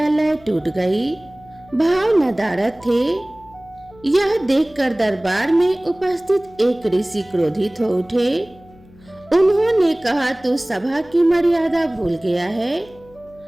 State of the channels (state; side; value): noise; left; hum, 25 dB below the sound